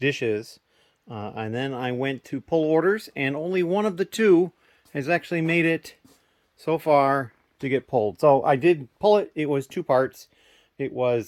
and then I went to pull orders, and only one of the 2 has actually made it so far to get pulled. So I did pull it. It was 2 parts. It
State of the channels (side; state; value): both; identical; correlation 1.00